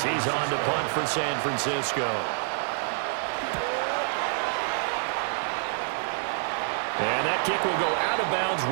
he's on to punt for San Francisco. And that kick will go out of bounds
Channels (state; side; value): silent; left; 58 dB below the other